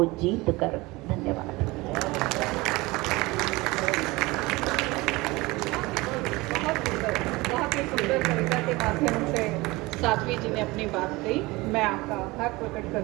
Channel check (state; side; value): quieter; left; 22.1 dB